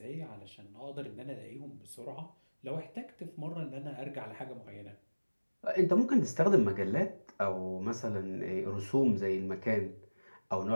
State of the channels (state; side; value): inverted; both; correlation -1.00